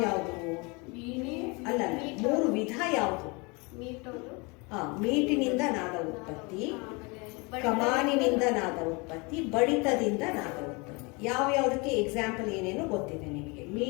ಅಲ್ಲ, 3 ವಿಧ ಯಾವುದು? ಮೀಟಿನಿಂದ ನಾದ ಉತ್ಪತ್ತಿ, ಕಮಾನಿನಿಂದ ನಾದ ಉತ್ಪತ್ತಿ, ಬಡಿತದಿಂದ ನಾದ ಉತ್ಪತ್ತಿ. ಯಾವ್ಯಾವುದಕ್ಕೆ ಎಕ್ಸಾಂಪಲ್ ಏನೇನು ಗೊತ್ತಿದೆ ನಿಮಗೆ.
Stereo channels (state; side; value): quieter; right; 28.5 dB